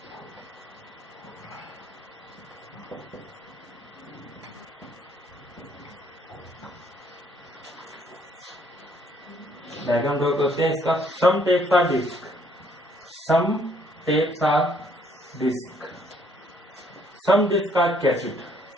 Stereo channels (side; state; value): both; normal; correlation 0.65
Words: Diagram draw करते हैं इसका। Some tapes are disc, some tapes are disc, some disc are cassette,